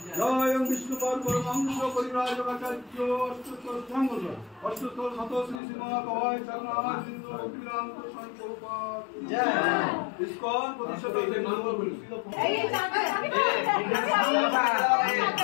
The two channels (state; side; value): drops out; right; at 5.6 s